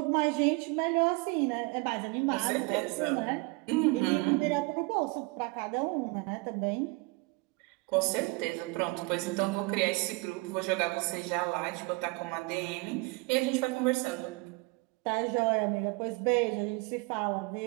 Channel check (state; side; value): quieter; left; 26.5 dB